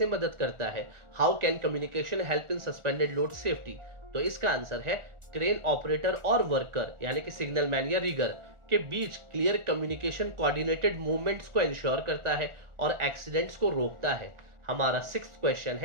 मदद करता है? How can communication help in suspended load safety? तो इसका आंसर है, क्रेन ऑपरेटर और वर्कर यानी कि सिग्नल मैन या रिगर के बीच क्लियर कम्युनिकेशन कोऑर्डिनेटेड मूवमेंट्स को इंश्योर करता है और एक्सीडेंट्स को रोकता है। हमारा सिक्स्थ क्वेश्चन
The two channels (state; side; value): late; left; 1.4 ms